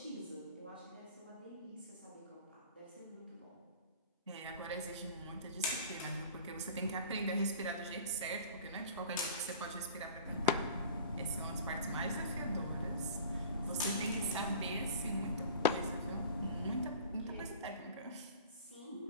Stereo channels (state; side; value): inverted; both; correlation -0.43